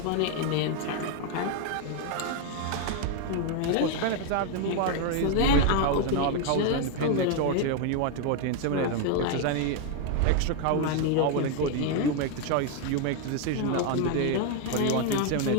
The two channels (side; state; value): both; different; correlation 0.01